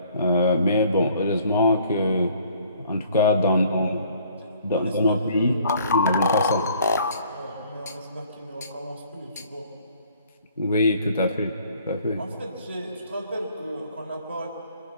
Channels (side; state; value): both; inverted; correlation -0.58